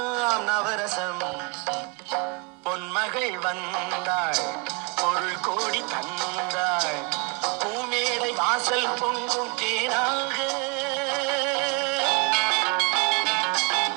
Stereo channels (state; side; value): quieter; left; 29.7 dB